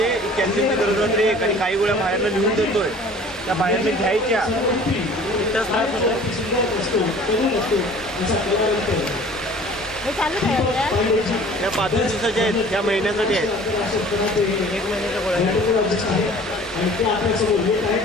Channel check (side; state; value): both; normal; correlation 0.48